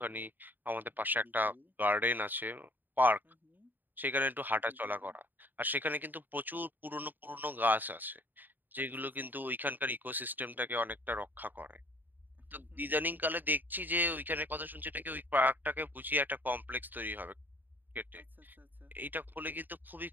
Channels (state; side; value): late; left; 0.089 ms